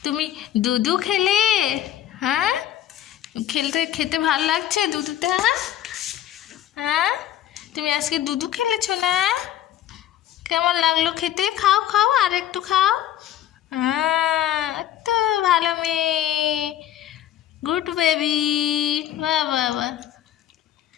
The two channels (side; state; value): right; quieter; 11.9 dB